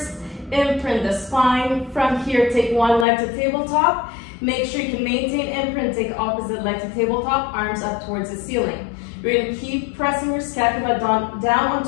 imprint the spine. From here, take one leg to tabletop. Make sure you can maintain imprint, take opposite leg to tabletop, arms up towards the ceiling. You're gonna keep pressing your scapula down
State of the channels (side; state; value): right; drops out; at 3.1 s